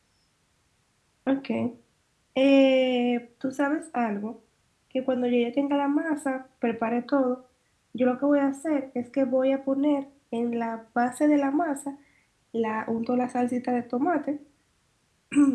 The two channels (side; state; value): both; identical; correlation 1.00